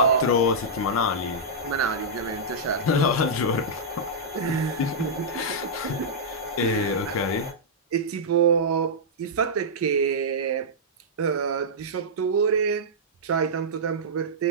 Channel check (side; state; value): both; normal; correlation -0.11